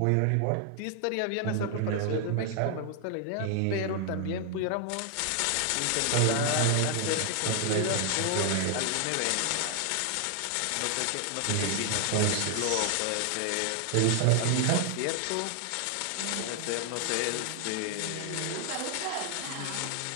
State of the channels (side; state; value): both; different; correlation 0.00